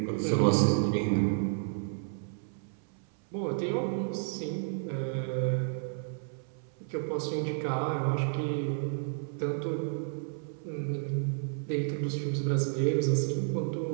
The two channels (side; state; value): left; silent; 57 dB below the other